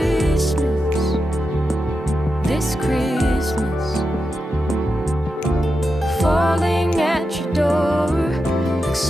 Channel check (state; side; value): normal; both; correlation 0.89